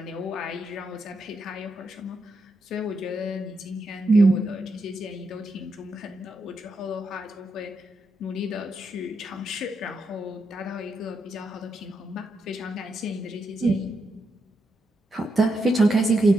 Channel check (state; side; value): normal; both; correlation 0.82